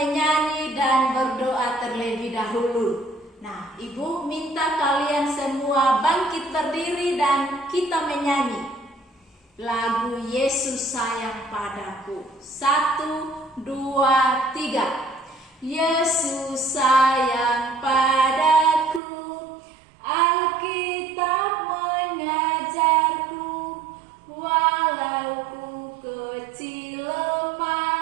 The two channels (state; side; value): drops out; left; at 19.0 s